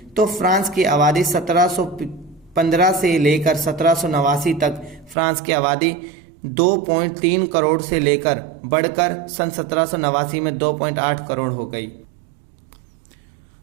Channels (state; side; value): drops out; left; at 5.2 s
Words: तो फ्रांस की आबादी 1715 से लेकर 1789 तक फ्रांस की आबादी 2.3 करोड़ से लेकर बढ़कर सन 1789 में 2.8 करोड़ हो गई।